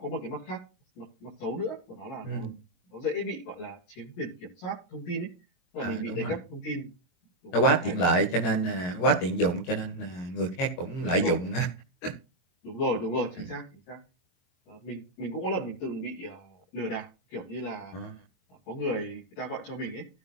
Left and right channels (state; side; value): late; right; 22 ms